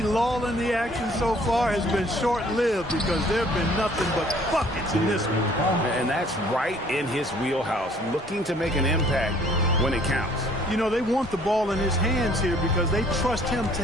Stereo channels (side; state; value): both; normal; correlation 0.58